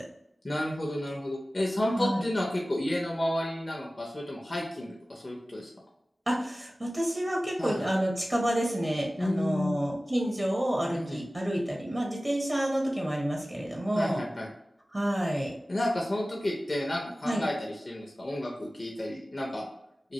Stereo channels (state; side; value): normal; both; correlation 0.97